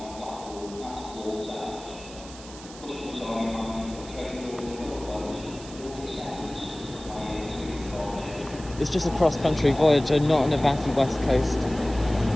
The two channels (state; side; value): noise; right; hiss, 17 dB below the sound